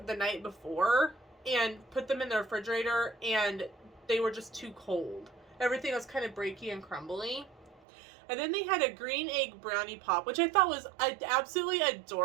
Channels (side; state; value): left; drops out; at 7.8 s